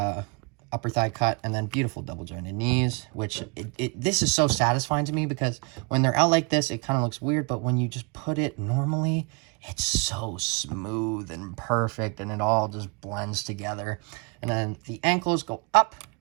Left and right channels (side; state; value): left; quieter; 32.2 dB